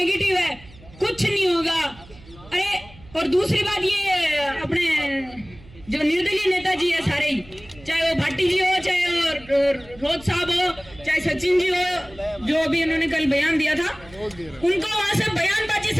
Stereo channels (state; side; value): noise; right; hum, 22 dB below the sound